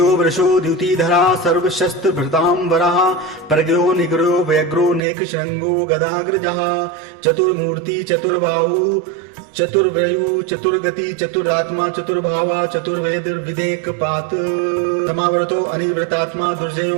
वृषो द्युतिधरा सर्वशस्त्र भृतांबरः प्रज्ञो निग्रहो व्यग्रो नेक श्रृंगो गदाग्रजः चतुर्मूर्ति चतुर्बाहु चतुर्व्रयु चतुर्गति चतुरात्मा चतुर्भावा चतुर्वेद विदेक पात समावर्तो अनिवृतात्मा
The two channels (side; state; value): left; drops out; at 5.0 s